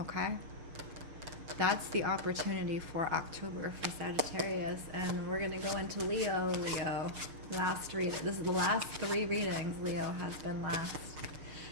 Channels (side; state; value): left; late; 6.7 ms